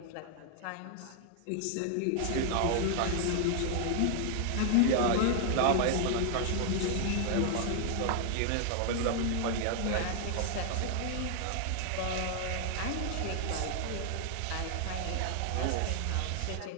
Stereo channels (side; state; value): both; different; correlation 0.00